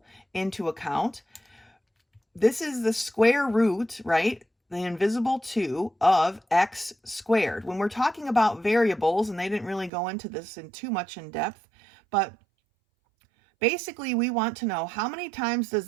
into account, this is the square root, right? The invisible 2 of x squared. When we're talking about variables, and they didn't really go into this in too much in depth, but basically, we want to know how many times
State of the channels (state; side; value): drops out; left; at 9.9 s